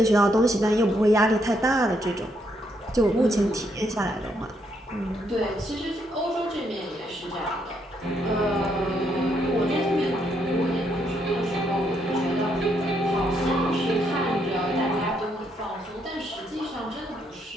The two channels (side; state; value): both; normal; correlation 0.75